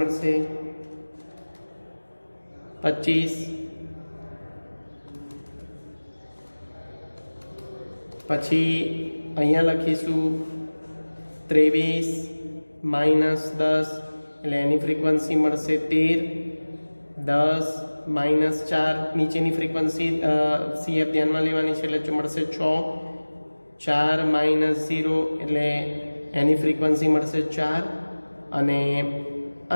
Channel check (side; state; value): both; inverted; correlation -1.00